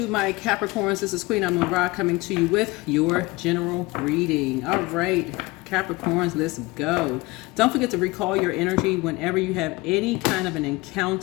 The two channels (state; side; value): quieter; right; 22.6 dB